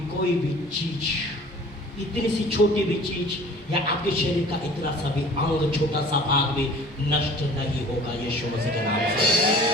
कोई भी चीज, इतनी सी छोटी भी चीज, या आपके शरीर का इतना सा भी अंग, छोटा सा भाग भी नष्ट नहीं होगा यीशु मसीह के नाम से।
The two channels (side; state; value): both; normal; correlation 0.47